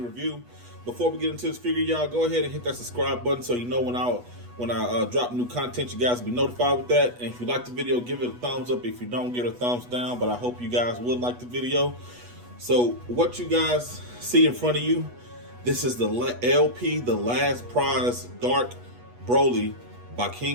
review. Before we get into this figure, y'all, go ahead and hit that subscribe button so you know when I drop new content, you guys will be notified with that. And if you like the video, give it a thumbs up. If you don't, give it a thumbs down. But I hope you guys would like the video. So what you guys see in front of you, this is the LP, the Last Prize Dark Broly by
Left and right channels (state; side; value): late; left; 8.2 ms